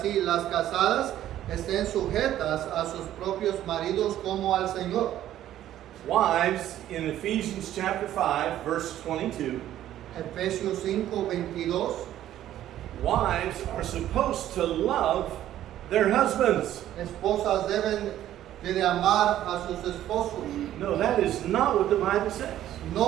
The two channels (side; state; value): left; quieter; 12.4 dB